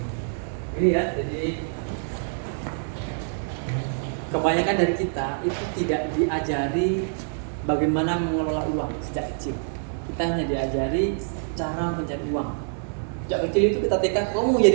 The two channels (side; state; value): left; silent; 59 dB below the other